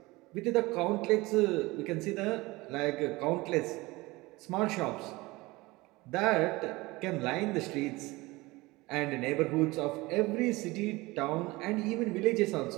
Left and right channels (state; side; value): quieter; left; 21.6 dB